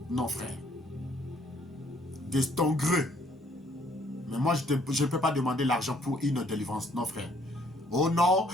Non, frère. De ton gré. Mais moi, je ne peux pas demander l'argent pour une délivrance. Non, frère. Oh non,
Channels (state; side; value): normal; both; correlation 0.64